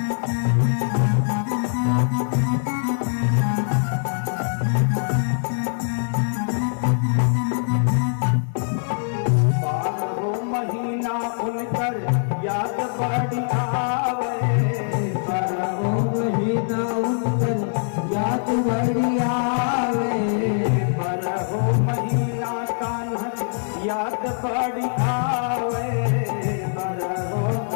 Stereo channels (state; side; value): silent; right; 60 dB below the other